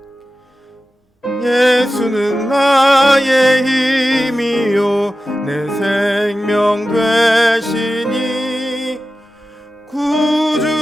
예수는 나의 힘이요 내 생명 되시니 구주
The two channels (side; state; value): both; normal; correlation 0.94